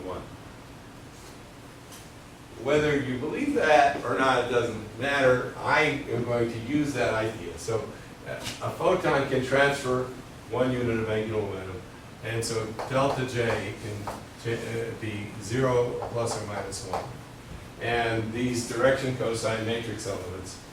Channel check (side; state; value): both; identical; correlation 1.00